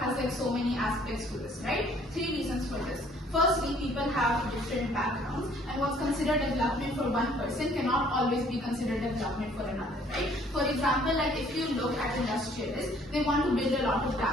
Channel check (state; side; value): normal; both; correlation 0.59